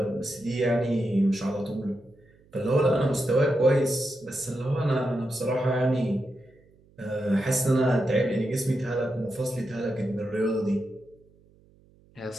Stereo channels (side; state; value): right; noise; hum, 30 dB below the sound